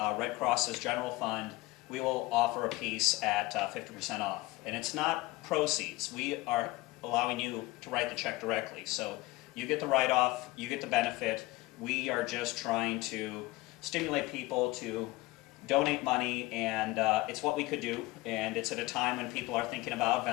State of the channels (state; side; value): quieter; right; 20.4 dB